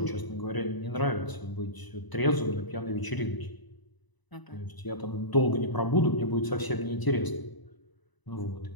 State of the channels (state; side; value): late; right; 1.0 ms